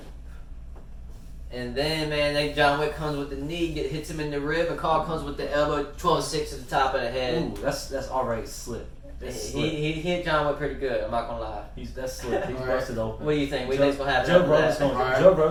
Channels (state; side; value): identical; both; correlation 1.00